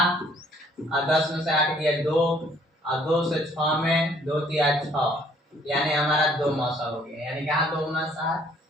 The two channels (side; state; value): both; normal; correlation 0.61